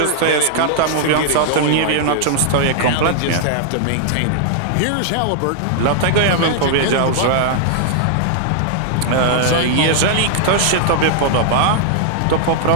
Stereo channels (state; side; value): different; both; correlation -0.01